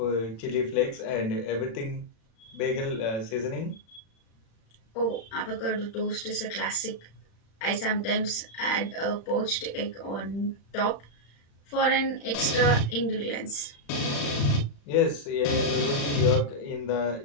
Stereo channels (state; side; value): late; right; 36 ms